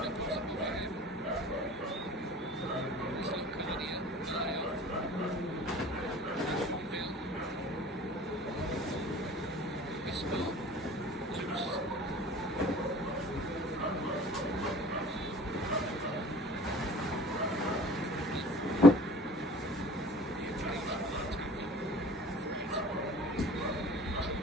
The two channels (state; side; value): normal; both; correlation 0.45